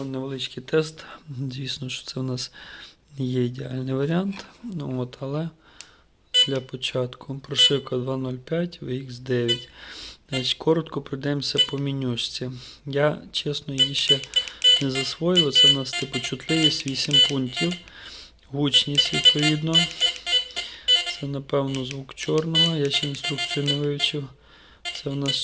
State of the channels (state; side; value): identical; both; correlation 1.00